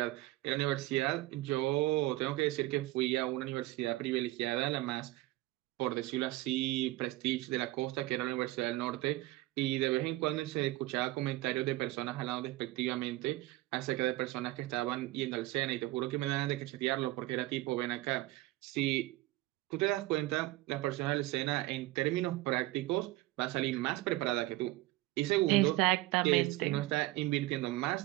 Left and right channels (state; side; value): quieter; left; 18.1 dB